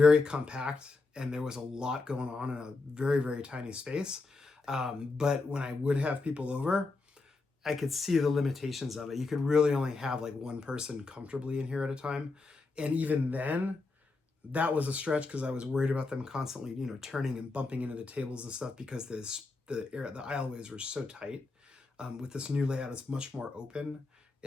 compact, and there was a lot going on in a very, very tiny space. But when I would have people over, I could see the limitations of it. You could really only have like one person comfortably in here at a time. And even then, that was a stretch because I was worried about them constantly, turning and bumping into the tables and stuff, because the aisleways were so tight. With this new layout, it's much more open.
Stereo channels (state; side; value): quieter; right; 3.8 dB